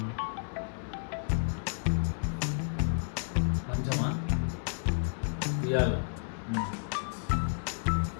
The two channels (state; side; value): silent; right; digital silence